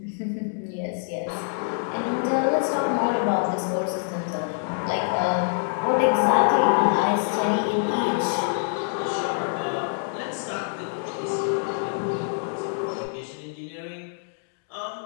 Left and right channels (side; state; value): right; silent; digital silence